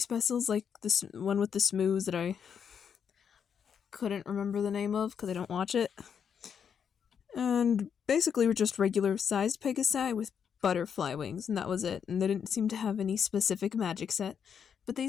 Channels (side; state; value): right; quieter; 7.4 dB